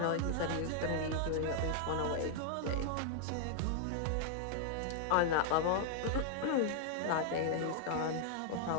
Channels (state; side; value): different; both; correlation 0.00